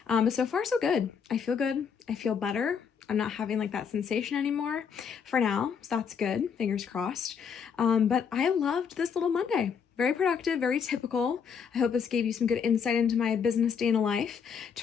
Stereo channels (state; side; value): quieter; right; 6.7 dB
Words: But so far, so good. I feel good. I feel better. I'm not having like that sensation anymore for now. So that's good. Fingers crossed. But I loved this little Monday. Very productive, very typical. I hope this gave you some good insight into my business day in a life.